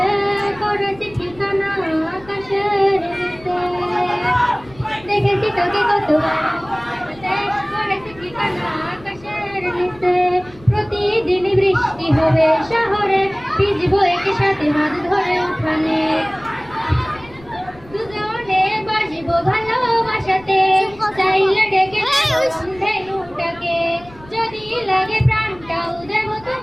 করেছি ঠিকানা আকাশের নিচে। দেখেছি তোকে কতবার করেছি ঠিকানা আকাশের নিচে। প্রতিদিনই বৃষ্টি হবে শহরে, ভিজবো একই সাথে হাত ধরে উঠানে। দুজনে বাসবো ভালোবাসাতে, চাইলে ডেকে ধেনুটাকে। যদি লাগে প্রাণটাও দেব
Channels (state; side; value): noise; left; rumble, 22 dB below the sound